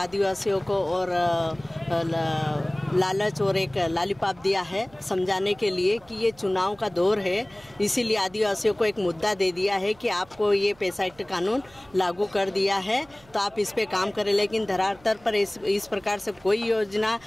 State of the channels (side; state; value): right; noise; hum, 27 dB below the sound